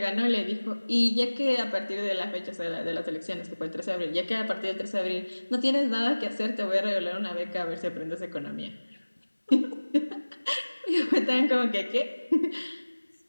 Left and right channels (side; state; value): both; inverted; correlation -1.00